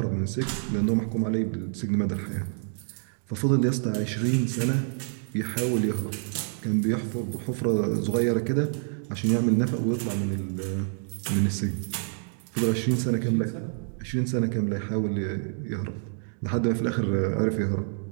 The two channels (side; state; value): left; silent; 60 dB below the other